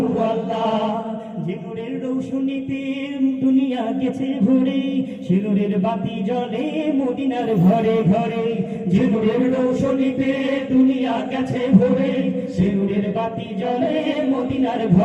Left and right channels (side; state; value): both; identical; correlation 1.00